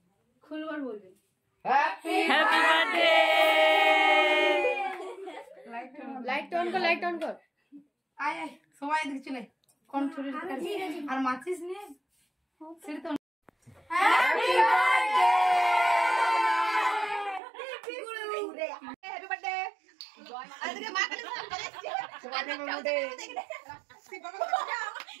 খুলবার বলবে হ্যাপি বার্থডে। লাইট অন কর, লাইট অন কর। আয় আয় সবাই এদিকে চলে, কোন ছুরি আর মাচিস নিয়ে সেটা তো হ্যাপি বার্থডে। হ্যাপি বার্থডে জয় মা। আরে মা কে তোমাদের মধ্যে যাবো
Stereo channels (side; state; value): left; drops out; at 17.4 s